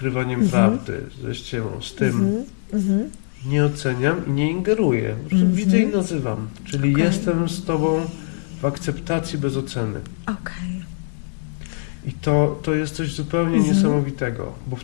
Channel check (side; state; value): right; silent; digital silence